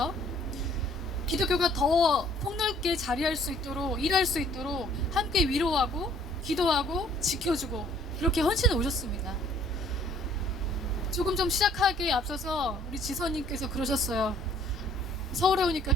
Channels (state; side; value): normal; both; correlation 0.59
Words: 기독교가 더 폭넓게 자리할 수 있도록, 일할 수 있도록 함께 위로하고 기도하고 지켜주고 이렇게 헌신해 오셨습니다. 조금 좀 시작하기에 앞서서 우리 지선님께서 그러셨어요. 서울에 오니까